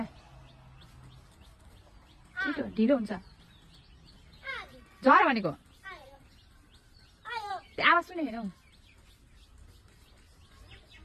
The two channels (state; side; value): identical; both; correlation 1.00